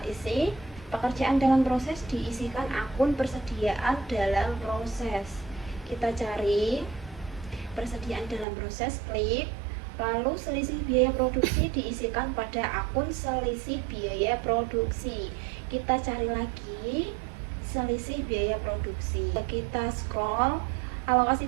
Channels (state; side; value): drops out; left; at 8.5 s